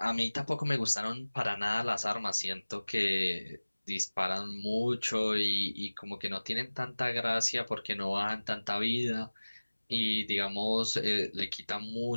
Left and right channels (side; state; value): both; inverted; correlation -1.00